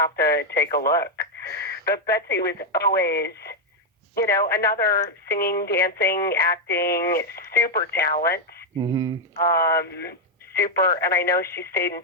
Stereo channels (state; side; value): normal; both; correlation 0.01